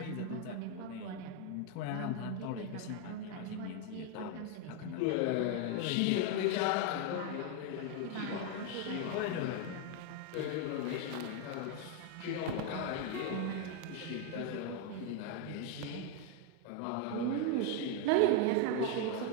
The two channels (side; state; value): both; different; correlation 0.01